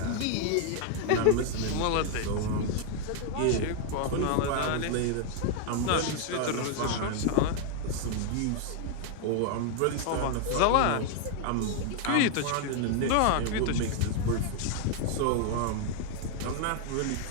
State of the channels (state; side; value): different; both; correlation 0.00